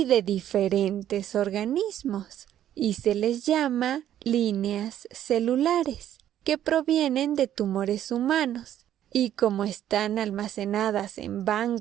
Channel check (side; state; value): left; quieter; 11.3 dB